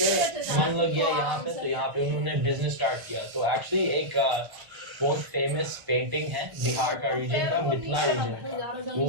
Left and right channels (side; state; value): left; late; 1.4 ms